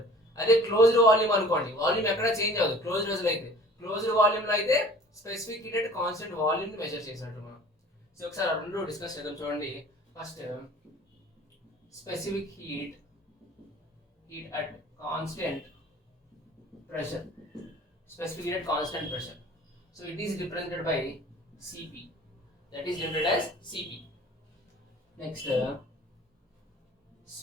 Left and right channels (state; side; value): normal; both; correlation 0.47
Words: అదే క్లోజ్డ్ వాల్యూమ్ అనుకోండి, వాల్యూమ్ ఎక్కడ చేంజ్ అవ్వదు. క్లోజ్డ్ వెసల్ అయితే, క్లోజ్డ్ వాల్యూమ్ లో అయితే specific heat at constant volume ని మెజర్ చేసినట్టు మనం. సో ఒకసారి ఆ రెండు డిస్కస్ చేద్దాం. చూడండి, first specific heat at constant pressure, specific heat at constant pressure. So it is represented by Cp, that is denoted as Cp. Next,